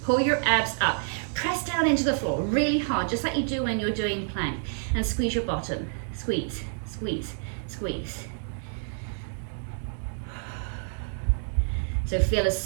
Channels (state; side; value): silent; left; digital silence